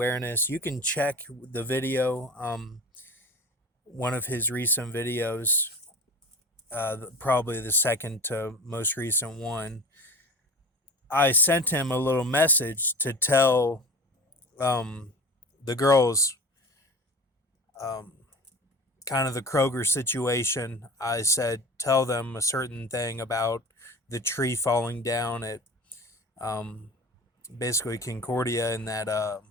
You can check the video, one of his recent videos, probably the second to most recent one. I sent him a little message to tell the girls um, kind of the Kroger situation. I said, tell them a certain thing about the tree falling down at um, basically Concordia, and that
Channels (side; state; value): both; normal; correlation 0.35